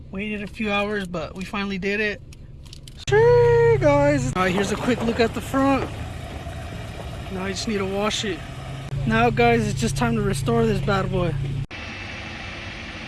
Waited a few hours, but we finally did it. Sure, guys. All right, here's a quick look at the front. Now I just need to wash it. Now, guys, it's just time to restore this bad boy.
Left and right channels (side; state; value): both; identical; correlation 1.00